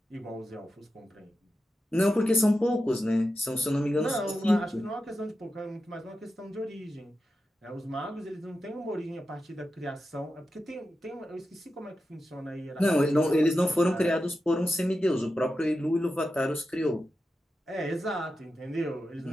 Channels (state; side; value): normal; both; correlation 0.91